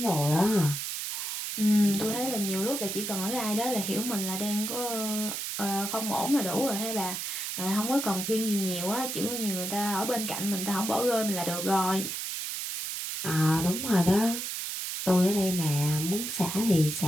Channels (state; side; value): noise; right; hiss, 4 dB below the sound